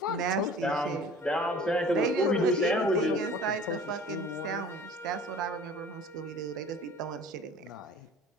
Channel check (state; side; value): normal; both; correlation 0.46